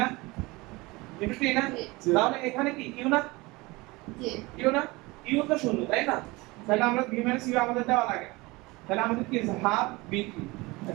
ইনটু টি না? তাহলে এখানে কি ইউ না? জি। ইউ না? ইউ তো শূন্য তাই না? তাহলে আমরা ভি মাইনাস ইউ আমাদের দেওয়া লাগে, তাহলে আমাদের কি আছে হাফ বি টি।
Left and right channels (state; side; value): quieter; left; 23.0 dB